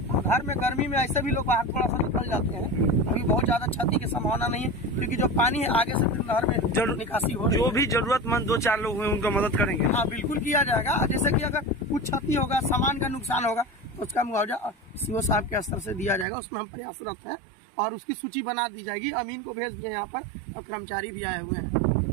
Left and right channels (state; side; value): drops out; left; at 16.2 s